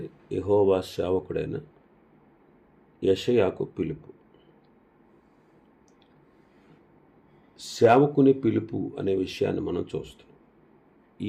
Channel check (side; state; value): both; identical; correlation 1.00